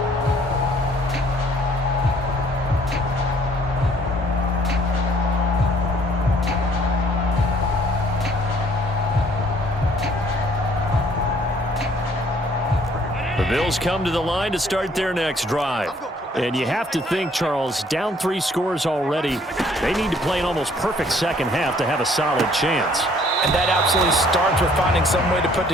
The Bills come to the line to start their next drive. And you have to think, Charles, down 3 scores already. They need to play an almost perfect second half to have a solid chance. And that absolutely starts with finding some way to put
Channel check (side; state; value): both; normal; correlation 0.60